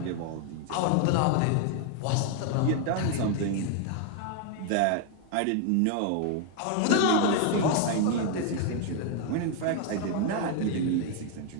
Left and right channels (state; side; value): different; both; correlation 0.00